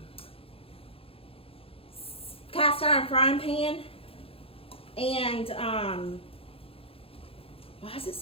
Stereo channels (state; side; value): late; right; 0.27 ms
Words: cast iron frying pan. And why is it